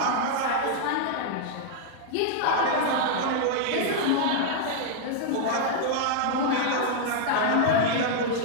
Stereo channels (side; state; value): both; different; correlation -0.01